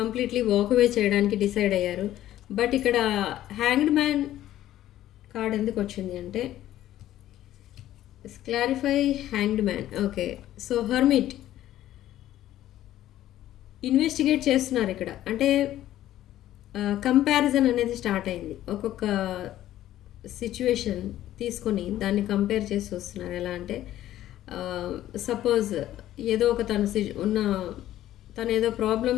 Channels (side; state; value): right; quieter; 13.3 dB